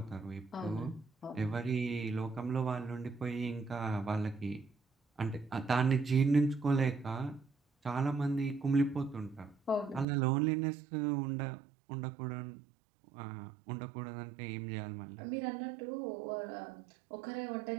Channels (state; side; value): drops out; left; at 10.1 s